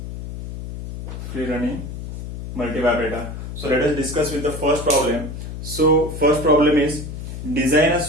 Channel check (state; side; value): noise; left; hum, 8 dB below the sound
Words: Free running multivibrator. So let us discuss with the first problem. So first problem is design a